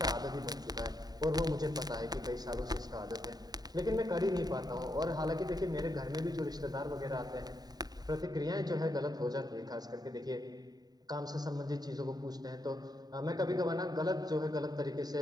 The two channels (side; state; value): left; late; 0.19 ms